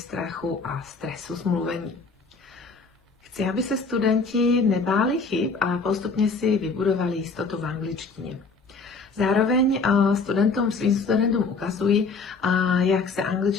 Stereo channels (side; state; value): right; quieter; 4.2 dB